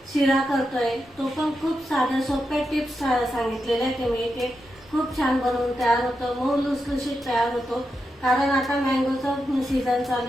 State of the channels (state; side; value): normal; both; correlation 0.87